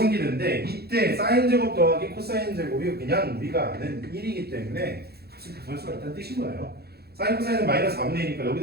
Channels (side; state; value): left; late; 0.46 ms